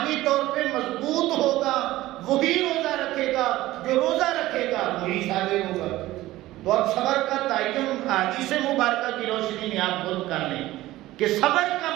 طور پہ مضبوط ہوگا وہی روزہ رکھے گا، جو روزہ رکھے گا وہی صابر ہوگا. تو اب صبر کا تعین حدیث مبارکہ کی روشنی میں آپ خود کر لیں کہ صبر کا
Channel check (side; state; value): left; quieter; 16.6 dB